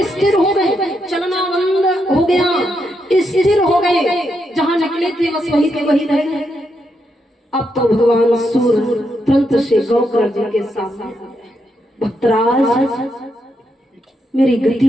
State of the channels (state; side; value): normal; both; correlation 0.81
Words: स्थिर हो गए, चलना बंद हो गया, स्थिर हो गए, जहां निकले थे बस वहीं के वहीं रह गए। अब तो भगवान सूर्य तुरंत से गौकर्ण जी के सामने, भक्तराज मेरी गति